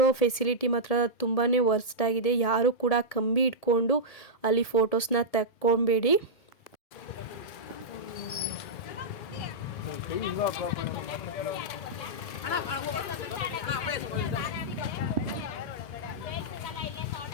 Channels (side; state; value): right; late; 1.7 ms